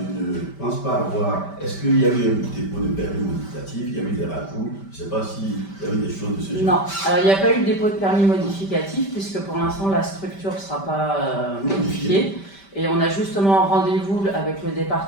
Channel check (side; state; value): right; late; 5.1 ms